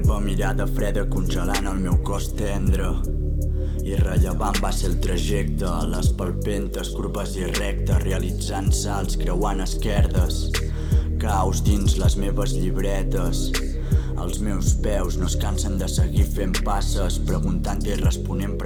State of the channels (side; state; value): both; identical; correlation 1.00